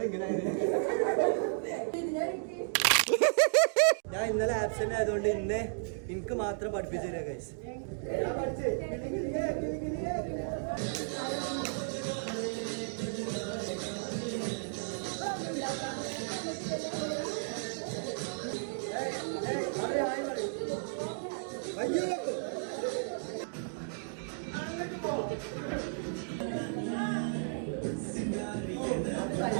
ഞാൻ ഇന്നലെ ആബ്സെന്റ് ആയതുകൊണ്ട് ഇന്ന് എനിക്ക് മാത്രം പഠിപ്പിച്ചു തരാം ഗൈസ്.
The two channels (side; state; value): left; silent; digital silence